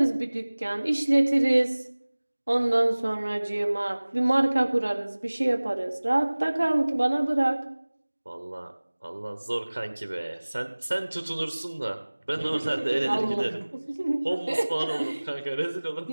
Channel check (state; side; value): inverted; both; correlation -1.00